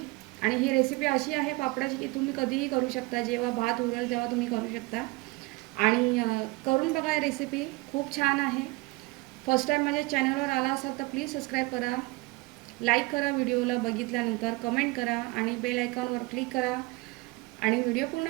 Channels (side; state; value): left; quieter; 23.8 dB